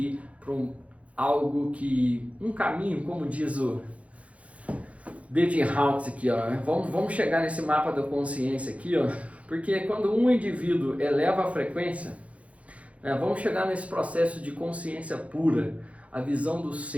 para um caminho, como diz o David Hawkins aqui, ó. Vamos chegar nesse mapa da consciência aqui, ó, porque quando um indivíduo eleva a frequência, vamos chegar nesse processo de consciência pura, a visão do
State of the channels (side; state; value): left; late; 0.065 ms